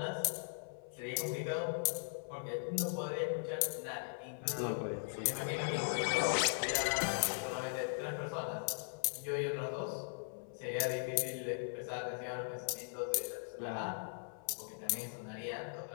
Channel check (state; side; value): silent; right; 52 dB below the other